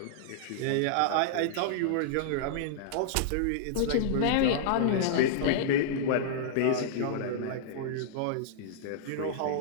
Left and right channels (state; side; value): different; both; correlation -0.01